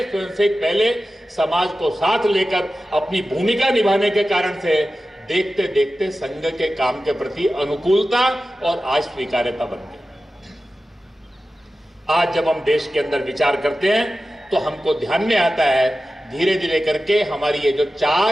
स्वयंसेवक पहले, समाज को साथ लेकर अपनी भूमिका निभाने के कारण से देखते देखते संघ के काम के प्रति अनुकूलता और आज स्वीकार्यता बन गई। आज जब हम देश के अंदर विचार करते हैं तो हमको ध्यान में आता है धीरे धीरे करके हमारी ये जो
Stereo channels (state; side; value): normal; both; correlation 0.94